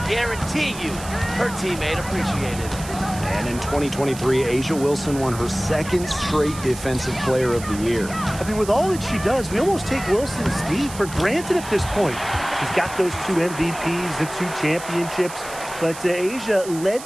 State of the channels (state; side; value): noise; right; hiss, 13 dB below the sound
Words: guarantee you her teammate appreciated it. And in 2023, Asia Wilson won her second straight Defensive Player of the Year. I mean, with all that she does, we almost take Wilson's D for granted at this point. She's got those 2 MVPs, the 2 championships, but Asia led